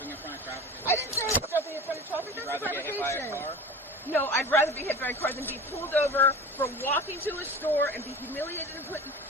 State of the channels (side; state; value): both; normal; correlation 0.34